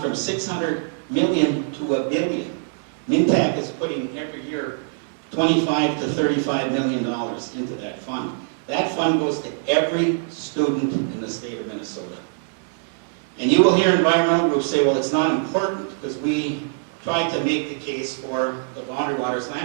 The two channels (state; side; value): silent; left; digital silence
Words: from $600 million to $1 billion. Mintac is putting every year $25 to $35 million into that fund. That fund goes to every student in the state of Minnesota. And you will hear environmental groups say, well, it's not important because we tried to make the case for the Boundary Waters